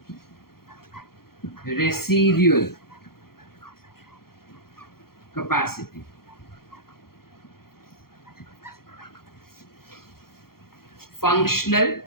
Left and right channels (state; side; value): late; right; 0.94 ms